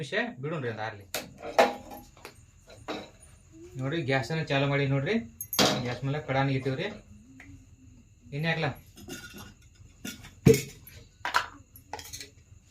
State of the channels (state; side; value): identical; both; correlation 1.00